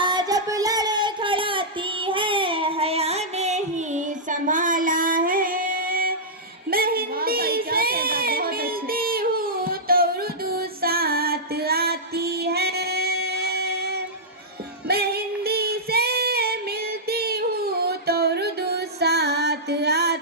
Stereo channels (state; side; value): normal; both; correlation -0.12